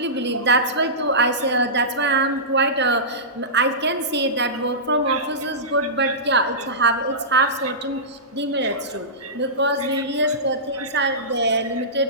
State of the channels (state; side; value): normal; both; correlation -0.19